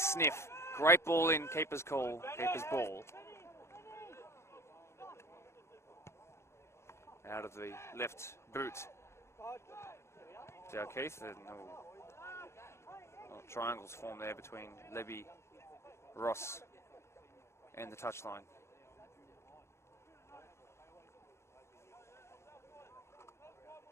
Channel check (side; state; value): right; late; 0.13 ms